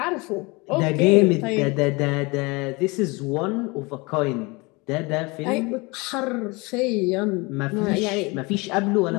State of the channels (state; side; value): quieter; right; 26.1 dB